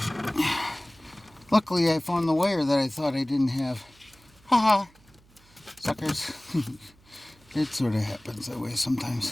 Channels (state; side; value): noise; right; hum, 29 dB below the sound